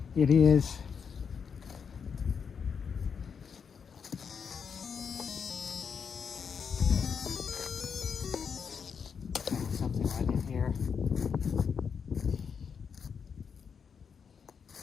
It is something right in here.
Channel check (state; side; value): quieter; right; 6.5 dB